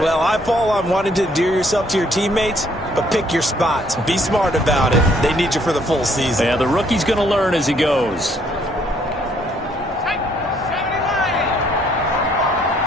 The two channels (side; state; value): both; normal; correlation 0.66